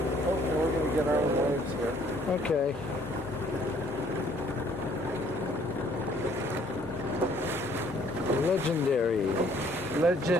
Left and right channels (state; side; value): normal; both; correlation 0.61